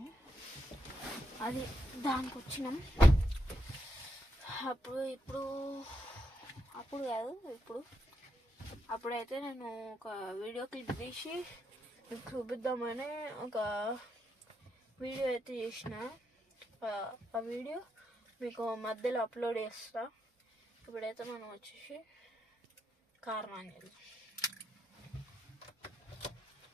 అది దానికి వచ్చినాం. అప్పుడైతే నేను ఒక వీడియో క్లిప్ తీసి మీకు చూపిద్దామని ఒక వీడియో అయితే చేసిన. ఆ వీడియో మీకు మధ్యలో అప్లోడ్ చేస్తా. ఇప్పుడైతే మనం వచ్చేసి కార్ ఆన్ చేద్దాం.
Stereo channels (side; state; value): both; normal; correlation 0.82